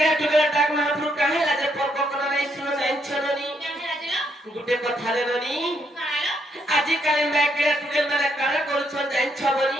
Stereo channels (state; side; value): normal; both; correlation 0.75